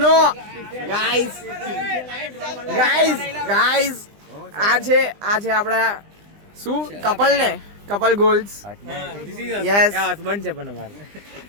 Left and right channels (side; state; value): left; late; 20 ms